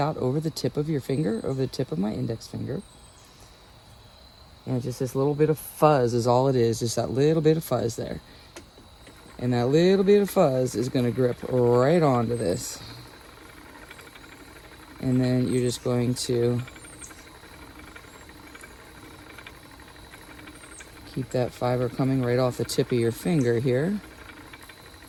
over the tip of your finger, over the tip of my index finger. And just this little bit of fuzz is all it is, just that little bit of fuzz there. And that little bit of fuzz is going to grip right onto this. And then you're just going to keep that fiber coming right off the tip of your finger here.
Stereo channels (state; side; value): identical; both; correlation 1.00